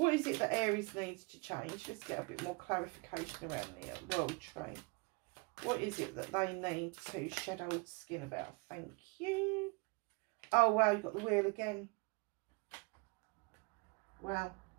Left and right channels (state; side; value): quieter; left; 30.3 dB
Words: is it that Aries needs to change? Let's get a bit more clarification around the world tree. What is it that they need to shed old skin about? Thank you. Oh, wow, you've got the wheel again. Wow.